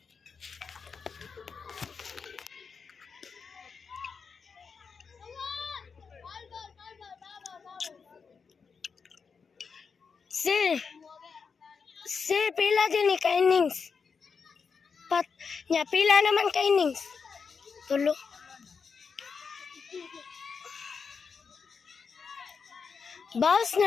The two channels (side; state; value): right; quieter; 5.6 dB